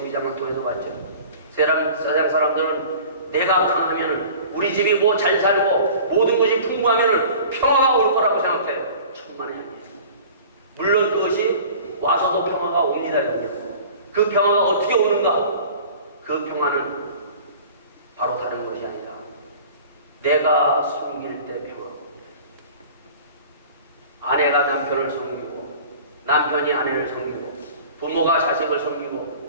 통해서 봤죠. 세상 사람들은 내가 강하면 우리 집이 뭐 잘 살고 모든 것이 풍부하면 평화가 올 거라고 생각해. 천만에 아니에요. 물론 그것이 와서도 평화가 옵니다. 그 평화가 어떻게 오는가? 그 평화는 바로 다른 것이 아니라 내가 섬길 때 평화가 옵니다. 아내가 남편을 섬기고 남편이 아내를 섬기고 부모가 자식을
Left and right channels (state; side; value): inverted; both; correlation -0.43